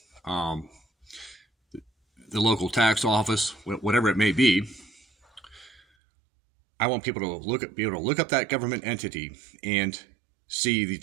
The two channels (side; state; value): left; drops out; at 5.8 s